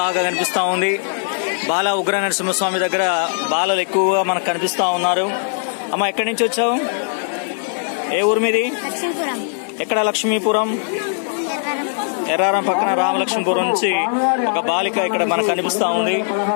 కనిపిస్తూ ఉంది. బాల ఉగ్ర నరసింహస్వామి దగ్గర బాలలు ఎక్కువగా మనకు కనిపిస్తూ ఉన్నారు. అమ్మ, ఎక్కడి నుంచి వచ్చావు? ఏ ఊరు మీది? ఎక్కడ? లక్ష్మీపురం. ఎర్రారం పక్కన రామలక్ష్మీపురం నుంచి ఒక బాలిక ఇక్కడ మనకు కనిపిస్తూ ఉంది.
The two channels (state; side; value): silent; right; digital silence